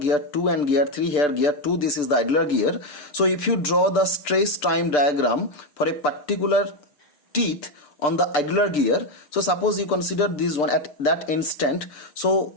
2 and gear 3, here gear 2, this is the idler gear. So if you draw the stress time diagram for a particular teeth on the idler gear, so suppose you consider this one at that instant,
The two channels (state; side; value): late; right; 6.8 ms